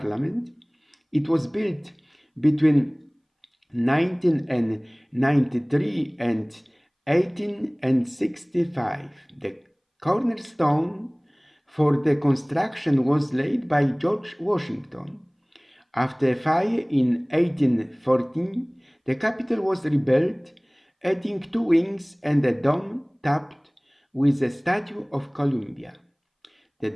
It was built between 1993 and 1865. The cornerstone for the construction was laid by George Washington. After a fire in 1814, the Capitol was rebuilt, adding 2 wings and a dome topped with a statue of Columbia. The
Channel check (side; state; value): both; identical; correlation 1.00